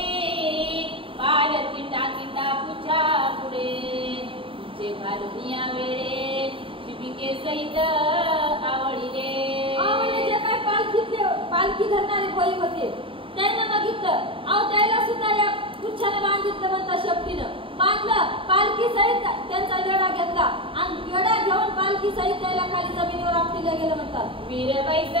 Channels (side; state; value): left; late; 0.25 ms